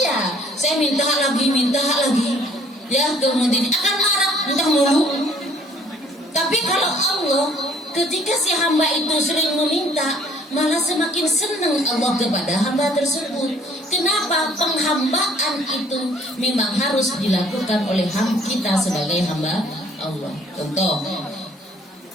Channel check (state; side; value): normal; both; correlation 0.58